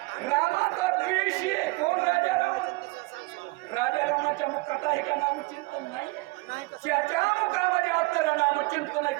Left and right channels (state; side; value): quieter; left; 23.5 dB